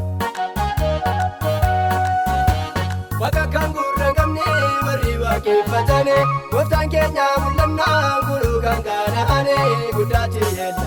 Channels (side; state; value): both; identical; correlation 1.00